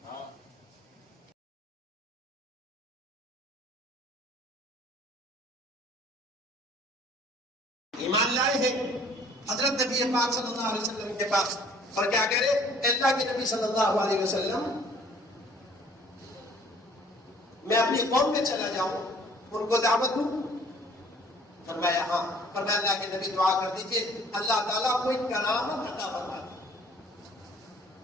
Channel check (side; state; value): both; normal; correlation 0.55